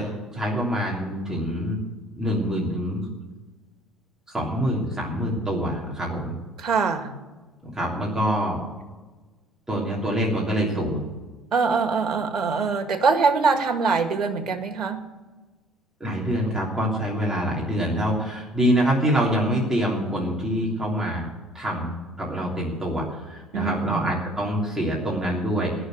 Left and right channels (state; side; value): normal; both; correlation 0.58